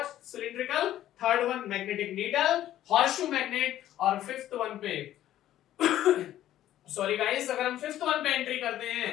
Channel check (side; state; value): right; quieter; 12.8 dB